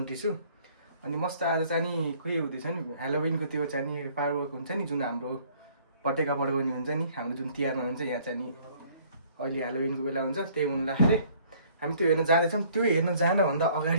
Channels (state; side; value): inverted; both; correlation -0.58